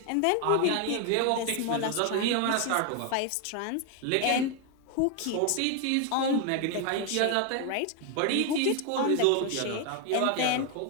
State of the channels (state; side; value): different; both; correlation 0.01